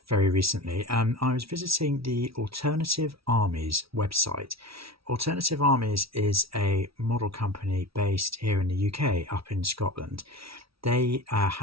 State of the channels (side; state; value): left; late; 0.76 ms